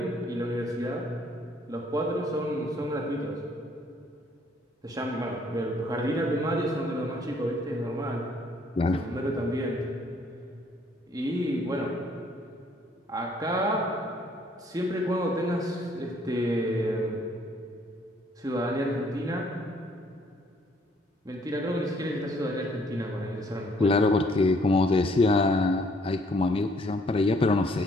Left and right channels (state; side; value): normal; both; correlation 0.64